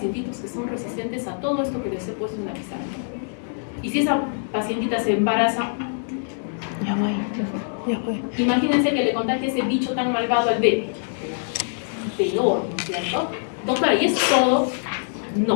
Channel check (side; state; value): right; silent; digital silence